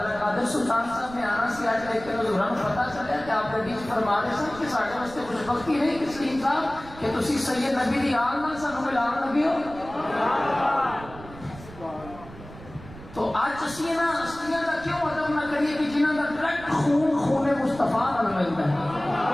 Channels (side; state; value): right; noise; rumble, 17 dB below the sound